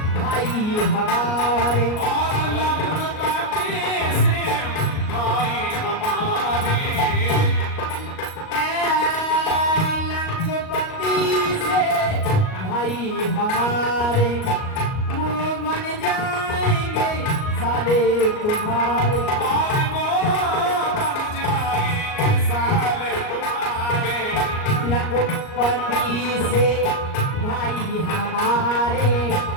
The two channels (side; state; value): right; late; 38 ms